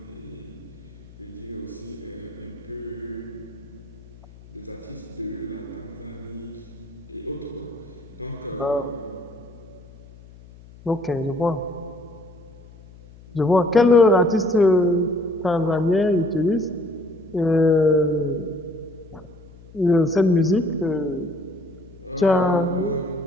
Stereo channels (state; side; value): noise; left; hum, 21 dB below the sound